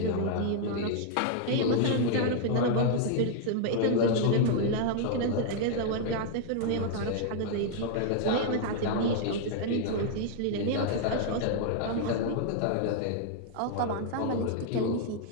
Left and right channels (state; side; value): different; both; correlation -0.01